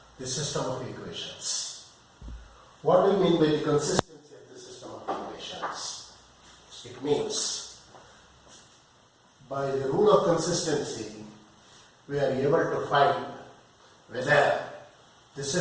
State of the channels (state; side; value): identical; both; correlation 1.00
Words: the system of equations. What do you mean by the consistency of the system of equations? It means by the rule of consistency we are able to find whether the